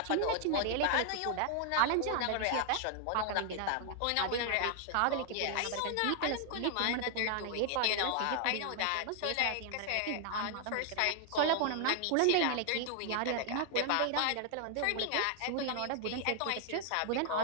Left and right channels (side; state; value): both; different; correlation 0.00